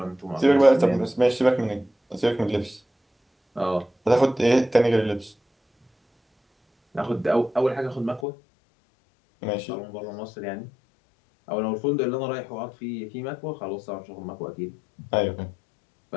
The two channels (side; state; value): right; drops out; at 8.2 s